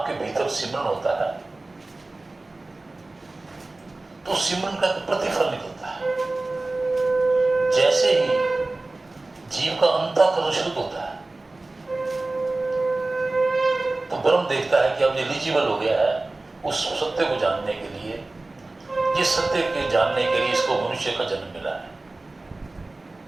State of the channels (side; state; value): left; quieter; 3.1 dB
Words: भीतर सिमरन होता है, तो सिमरन का प्रतिफल निकलता है। जैसे ही जीव का अंतःकरण शुद्ध होता है, तो ब्रह्म देखता है कि अब एलिजिबल हो गया है उस सत्य को जानने के लिए, जिस सत्य के जानने के लिए इसको मनुष्य का जन्म मिला है।